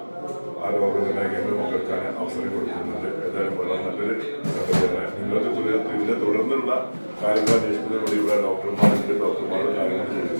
ആ രോഗനിർണയ കേന്ദ്രം പങ്കെടുക്കാൻ അവസരം കൊടുക്കുന്നുണ്ട്. ഏതായാലും വളരെ നല്ലൊരു സംഗതിയാണ്. നിങ്ങൾക്ക് ഇതിന്റെ തുടർന്നുള്ള കാര്യങ്ങൾ അന്വേഷിക്കുന്നതിന് വേണ്ടി ഇവിടെ ഡോക്ടർമാരുടെ കാര്യങ്ങൾ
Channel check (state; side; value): inverted; both; correlation -1.00